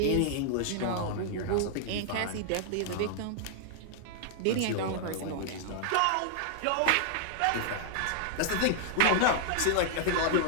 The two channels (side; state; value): both; different; correlation -0.01